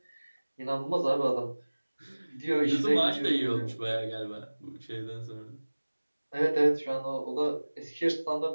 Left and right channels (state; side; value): inverted; both; correlation -1.00